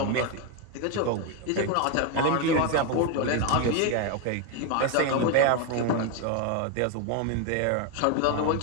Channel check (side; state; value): both; different; correlation 0.02